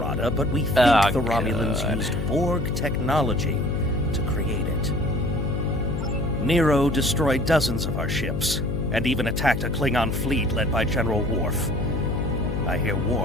but we think the Romulans used Borg technology to create it. Nero destroyed dozens of our ships, and even attacked a Klingon fleet led by General Worf. I hear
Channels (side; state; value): left; noise; hum, 2 dB below the sound